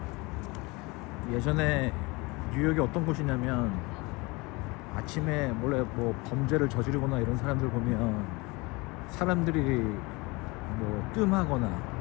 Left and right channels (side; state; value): right; quieter; 25.2 dB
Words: 예전에 뉴욕이 어떤 곳이냐면 아침에 원래 뭐 범죄를 저지르거나 이런 사람들 보면 사람들이 뭐 뜸하거나